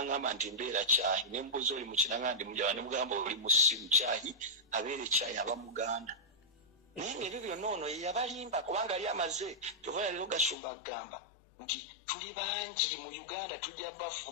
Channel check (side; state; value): right; drops out; at 10.6 s